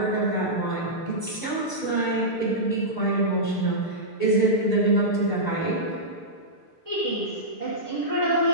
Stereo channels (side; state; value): right; late; 6.7 ms